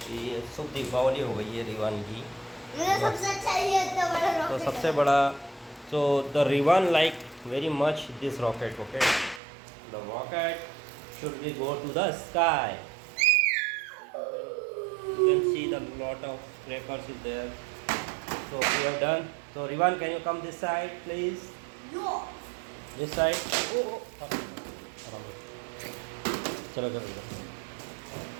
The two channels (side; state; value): left; drops out; at 9.4 s